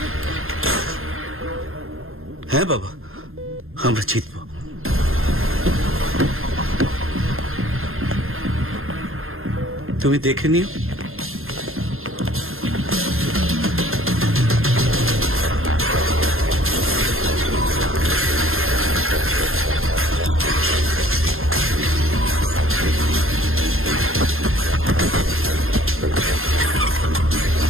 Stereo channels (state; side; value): late; left; 0.61 ms